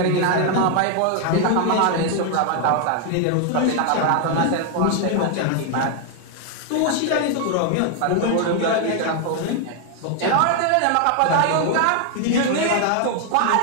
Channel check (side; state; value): both; different; correlation 0.00